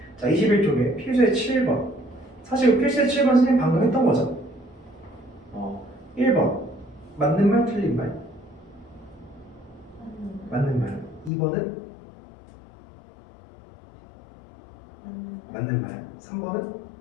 자, 21쪽에 필수의 7번. 사실 필수의 7번 선생님 방금 했던 거죠? 1번 맞는 말 틀린 말? 맞는 말. 2번은? 맞는 말. 3번은?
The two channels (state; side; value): drops out; right; at 11.3 s